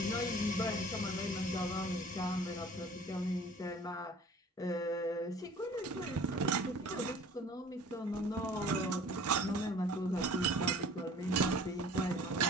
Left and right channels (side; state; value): both; normal; correlation 0.48